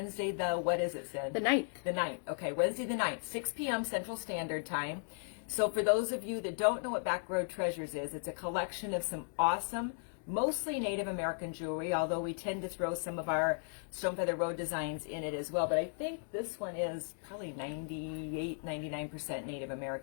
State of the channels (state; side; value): silent; right; 54 dB below the other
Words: what is it, Sid? The 9th. The 9th. Okay, Wednesday the 9th, 6 p.m. Central Standard Time. So for those of you that don't know what Backroad Treasures is, it's a collection of some awesome, mostly Native American jewelry, although we tend to throw some of our Stone Feather Road designs in it as well. But I think this one is probably 98, 99% Native